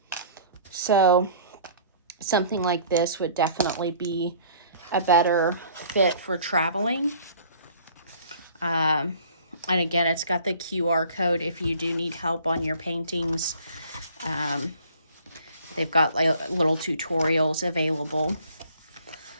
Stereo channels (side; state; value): both; inverted; correlation -0.53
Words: So something like this would definitely be a better fit for traveling. And again, it's got the QR code if you do need help on your paintings. They've got like little tutorials available.